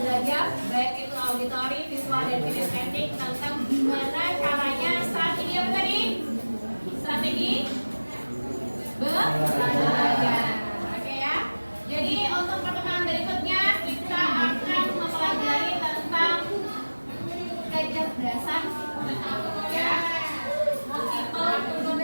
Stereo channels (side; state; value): both; inverted; correlation -1.00